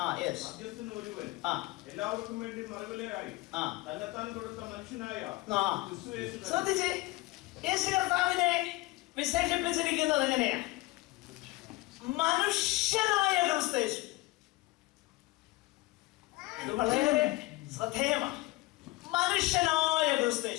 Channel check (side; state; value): right; quieter; 20.9 dB